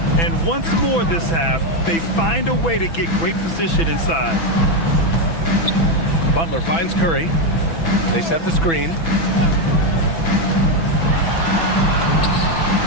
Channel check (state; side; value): late; right; 6.0 ms